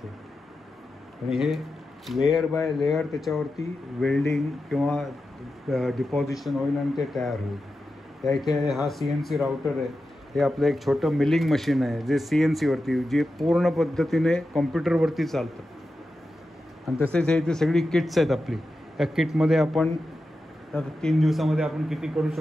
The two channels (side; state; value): both; normal; correlation 0.91